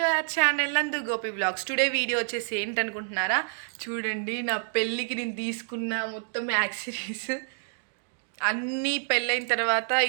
our channel నందు Gopi blogs. Today video వచ్చేసి ఏంటనుకుంటున్నారా? చూడండి, నా పెళ్ళికి నేను తీసుకున్న మొత్తం యాక్సెసరీస్ అన్నీ పెళ్ళైన తర్వాత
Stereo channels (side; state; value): left; silent; digital silence